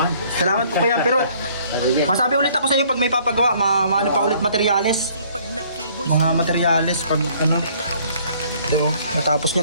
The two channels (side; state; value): both; inverted; correlation -0.59